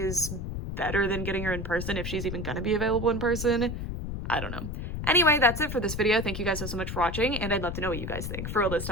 better than getting her in person if she's even going to be available in person. I don't know. Anyway, that's it for this video. Thank you guys so much for watching, and I'd love to know what you guys think. For real this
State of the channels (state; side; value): noise; left; rumble, 5 dB below the sound